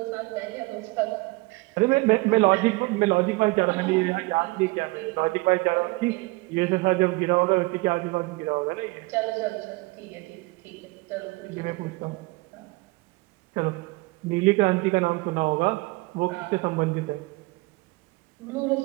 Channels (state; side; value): quieter; left; 24.2 dB